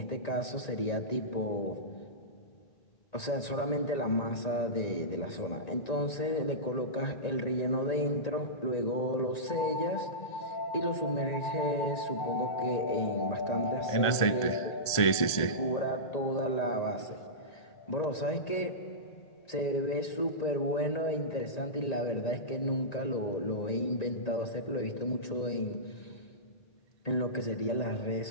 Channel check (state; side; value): late; right; 1.5 ms